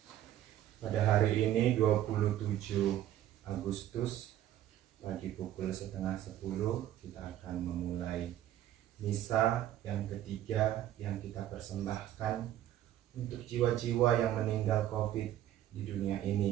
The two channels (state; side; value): quieter; left; 12.3 dB